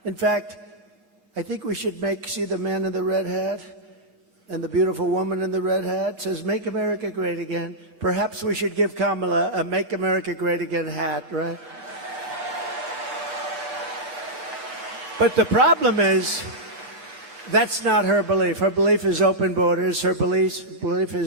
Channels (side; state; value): left; late; 7.4 ms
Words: In fact, I think we should see the man in the red hat and the beautiful woman in the red hat says, "Make America Great Again." Perhaps we should give Kamala a "Make America Great Again" hat, right? But the problem is, that's not her belief. Her belief is open borders. Her belief